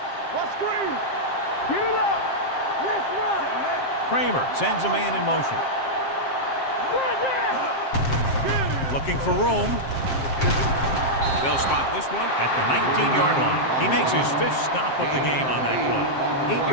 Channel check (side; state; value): right; late; 7.6 ms